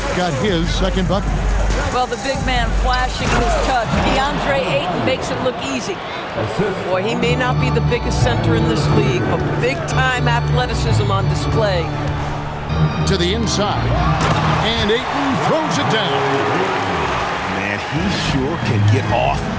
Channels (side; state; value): both; identical; correlation 1.00